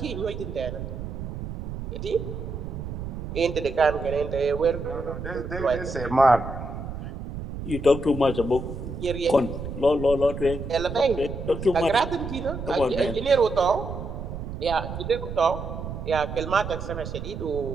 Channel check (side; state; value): right; noise; rumble, 7 dB below the sound